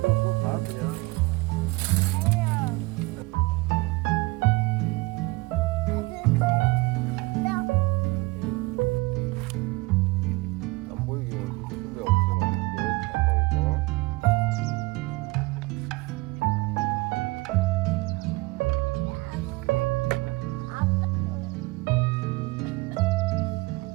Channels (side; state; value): left; quieter; 23.7 dB